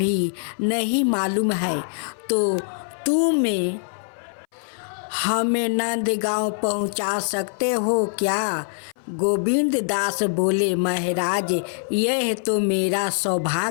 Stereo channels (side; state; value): right; silent; 61 dB below the other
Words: नहीं मालूम है, तो तुम हमें नंदगांव पहुंचा सकते हो क्या? गोविंद दास बोले, महाराज यह तो मेरा